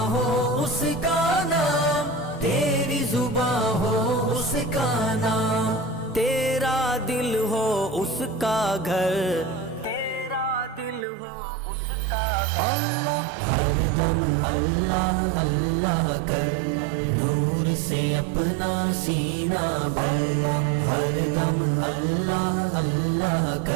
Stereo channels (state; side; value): drops out; left; at 11.1 s